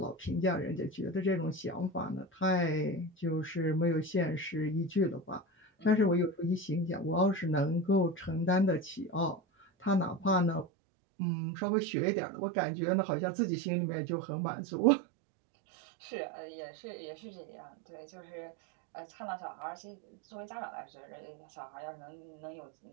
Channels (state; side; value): drops out; left; at 10.7 s